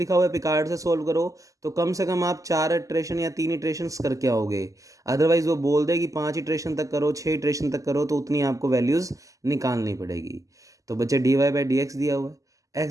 हुआ है पिकार्ड से सोल्व करो, तो कम से कम आप 4 इटरेशन या 3 इटरेशंस करके आओगे। अदरवाइज वो बोल दे कि 5 इटरेशन तक करो, 6 इटरेशन तक करो, तो उतनी आपको वैल्यूज़ निकालनी पड़ेगी। तो बच्चे dy/dx दिया हुआ है,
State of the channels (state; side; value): late; left; 0.16 ms